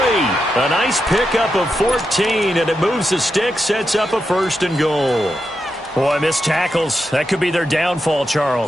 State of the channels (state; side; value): normal; both; correlation 0.87